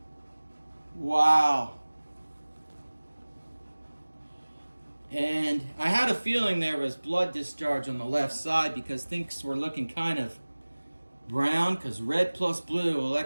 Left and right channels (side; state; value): both; inverted; correlation -1.00